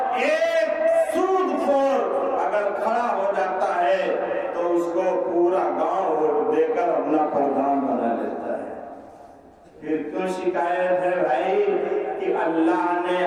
ایک سود خور اگر کھڑا ہو جاتا ہے تو اس کو پورا گاؤں ووٹ دے کر اپنا پردھان بنا لیتا ہے۔ پھر کیوں شکایت ہے بھائی کہ اللہ نے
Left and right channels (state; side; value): identical; both; correlation 1.00